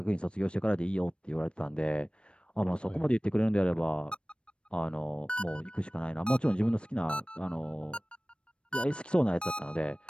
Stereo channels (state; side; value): late; right; 0.057 ms